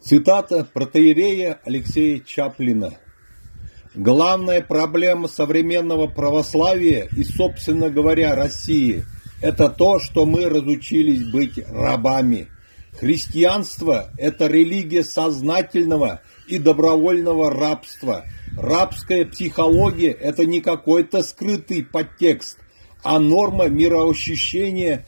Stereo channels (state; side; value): inverted; both; correlation -1.00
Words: Цитата протоиерея Алексея Чаплина. Главная проблема современного православия и, собственно говоря, России – это то, что мы разучились быть рабами. Христианство – это религия сознательного и добровольного рабства. Рабская психология – это не какой-то скрытый подтекст, а норма мироощущения